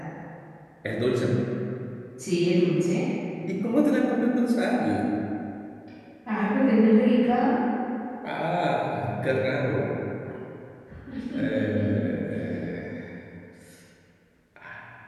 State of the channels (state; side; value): identical; both; correlation 1.00